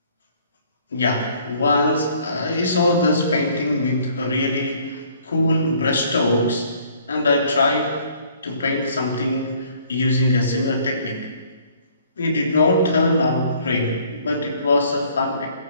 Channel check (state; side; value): inverted; both; correlation -0.59